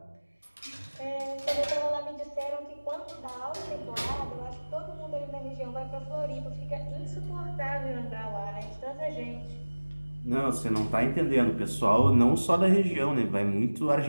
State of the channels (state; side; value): inverted; both; correlation -1.00